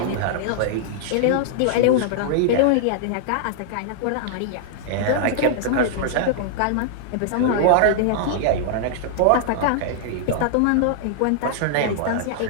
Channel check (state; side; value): different; both; correlation -0.01